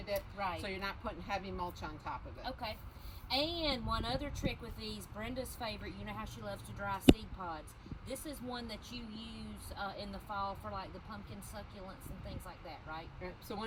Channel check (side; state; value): both; identical; correlation 1.00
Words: it. Right. So you're not putting heavy mulch on top of it. Okay. And one other trick with these, Brenda's favorite, you know how she loves to dry seed pods. This is one that you use in the fall for like the pumpkin succulents and things like that, right? So